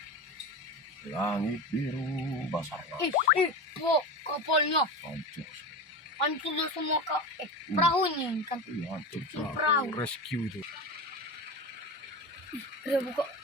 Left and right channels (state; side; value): normal; both; correlation 0.25